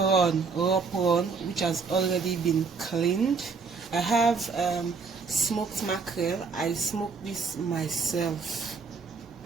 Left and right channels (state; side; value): quieter; left; 4.9 dB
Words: raw prawn, which has already been cleaned. I have smoked mackerel. I smoked this myself,